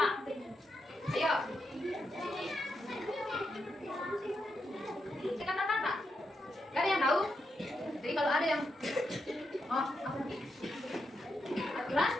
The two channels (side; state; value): both; normal; correlation 0.84